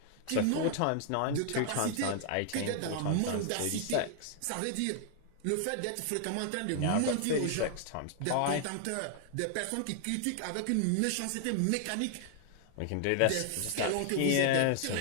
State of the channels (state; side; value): different; both; correlation 0.00